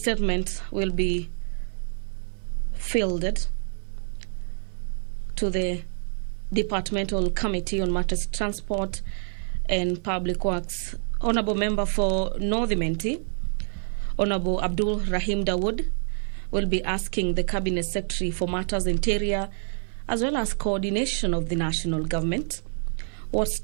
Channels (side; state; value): left; silent; digital silence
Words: will be fielded to the Departmental Committee on Matters Transport and Public Works. Honourable Member for North Menti, Honourable Abdul Rahim Dawood, will be asking the Cabinet Secretary for Matters Interior as well as coordination of the national government, what